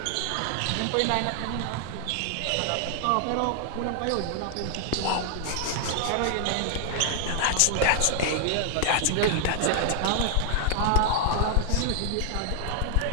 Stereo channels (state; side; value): different; both; correlation 0.00